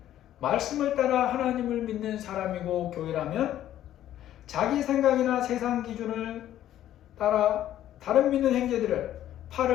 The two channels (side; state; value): right; quieter; 12.2 dB